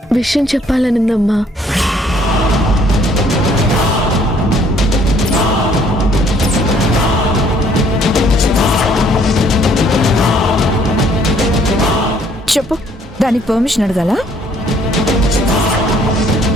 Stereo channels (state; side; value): normal; both; correlation 0.62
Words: విషయం చెప్పాలనుందమ్మా. చెప్పు, దానికి పర్మిషన్ అడగాల?